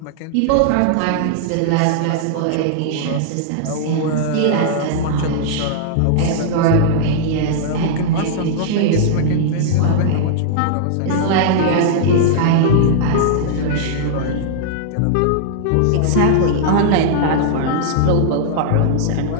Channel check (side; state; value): both; different; correlation -0.02